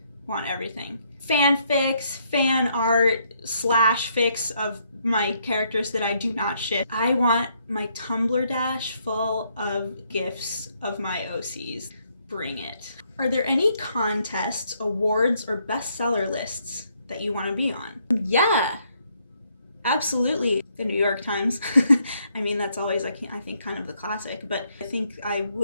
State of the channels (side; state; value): both; inverted; correlation -0.72